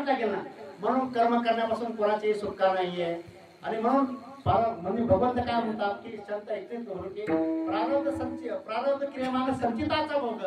लागेल ना. म्हणून कर्म करण्यापासून कोणाची सुटका नाहीये. आणि म्हणून म्हणजे भगवंत काय म्हणतात की संत ऐकतेच करू की प्रारब्ध क्रियमान संचिताचा भोग,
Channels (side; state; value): both; identical; correlation 1.00